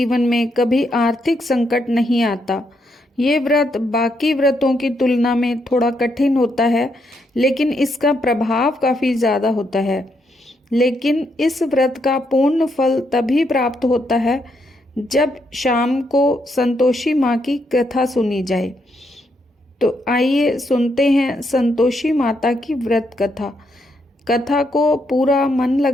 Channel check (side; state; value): both; normal; correlation 0.77